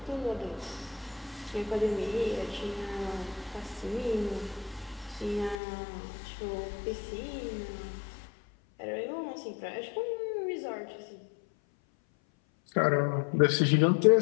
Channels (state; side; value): drops out; right; at 5.6 s